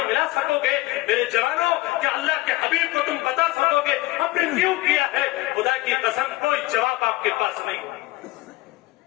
ملا سکو گے؟ میرے جوانوں، کیا اللہ کے حبیب کو تم بتا سکو گے آپ نے کیوں کیا ہے؟ خدا کی قسم کوئی جواب آپ کے پاس نہیں۔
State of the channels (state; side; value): quieter; right; 19.4 dB